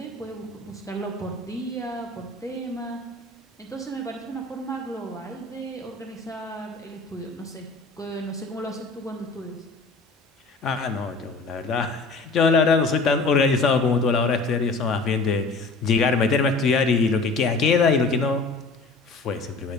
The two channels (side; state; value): right; quieter; 3.7 dB